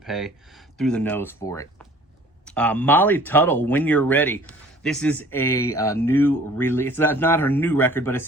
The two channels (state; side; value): normal; both; correlation 0.51